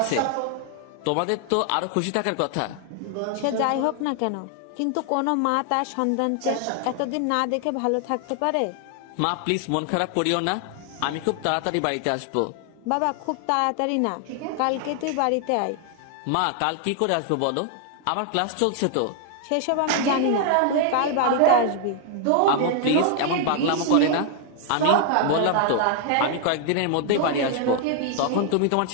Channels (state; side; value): different; both; correlation 0.00